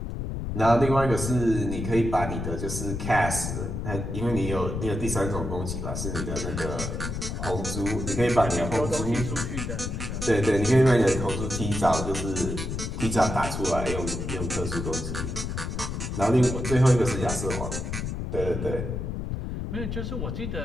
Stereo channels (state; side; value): noise; left; rumble, 4 dB below the sound